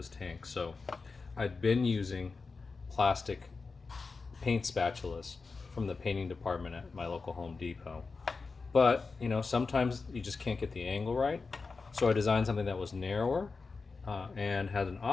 tank. So I'd been using plastic paint spatulas from the painting department at my local Home Depot. But, you know, sometimes you just can't get the angle right. So I designed something that was narrower and had an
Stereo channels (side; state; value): right; quieter; 4.4 dB